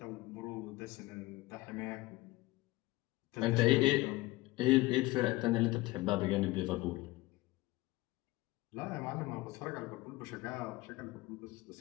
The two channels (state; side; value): quieter; right; 19.6 dB